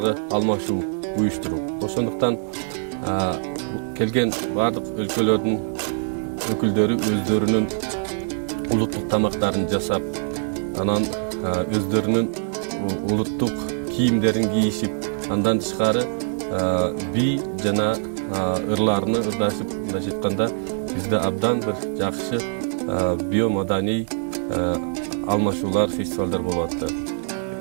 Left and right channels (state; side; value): silent; left; digital silence